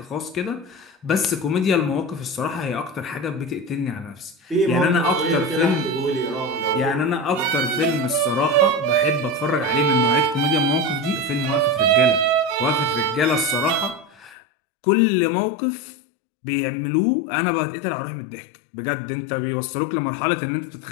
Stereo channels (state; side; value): drops out; right; at 14.4 s